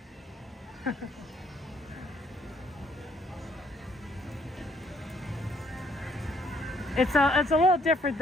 It's a little different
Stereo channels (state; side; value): normal; both; correlation 0.67